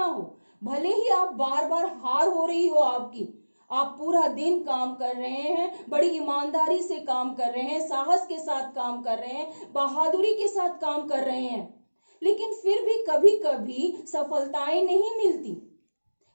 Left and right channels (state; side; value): inverted; both; correlation -1.00